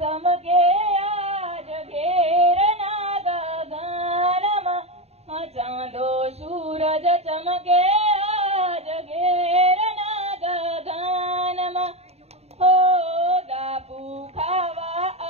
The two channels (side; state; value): left; late; 0.30 ms